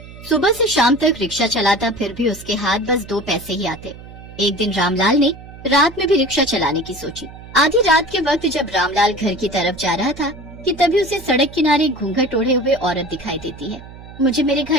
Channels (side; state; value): right; noise; hum, 17 dB below the sound